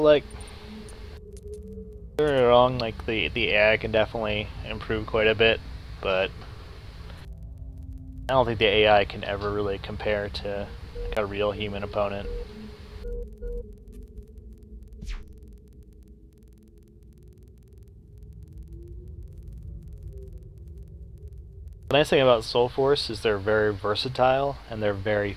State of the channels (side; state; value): both; identical; correlation 1.00